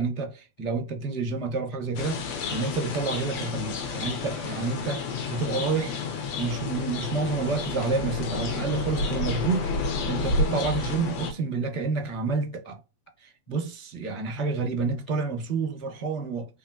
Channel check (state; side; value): late; right; 8.2 ms